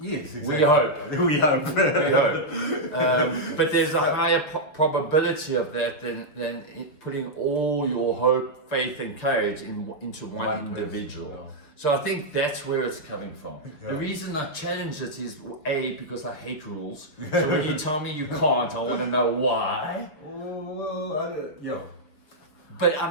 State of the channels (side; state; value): right; late; 6.6 ms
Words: Yes, exactly. We hope. We hope. We hope. But there's a higher probability of that than putting all your hope, faith, and courage into one individual. Person, yeah. So I think that's where it's coming from. Yeah. The reason I challenge it is A, because I hate rules. So when you tell me you can't, I want to know why. Well, yeah. But I